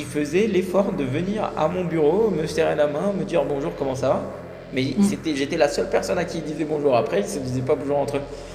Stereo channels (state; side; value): identical; both; correlation 1.00